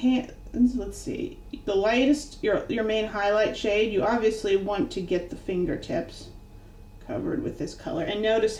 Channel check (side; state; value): both; identical; correlation 1.00